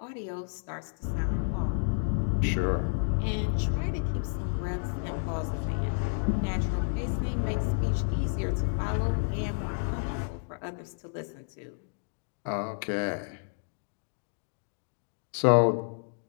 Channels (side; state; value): right; silent; digital silence